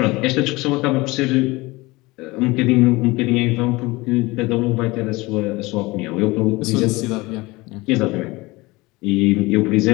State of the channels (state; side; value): quieter; right; 22.1 dB